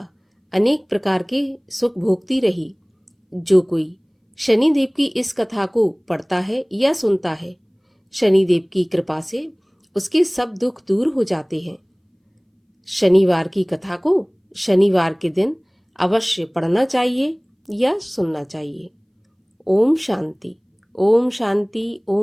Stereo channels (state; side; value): identical; both; correlation 1.00